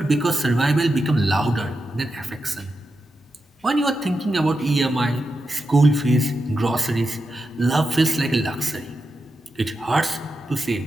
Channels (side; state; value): both; normal; correlation 0.88